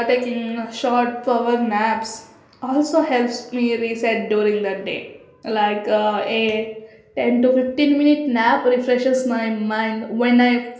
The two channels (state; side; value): identical; both; correlation 1.00